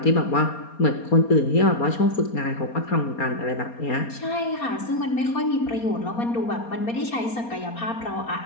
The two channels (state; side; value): late; right; 4.3 ms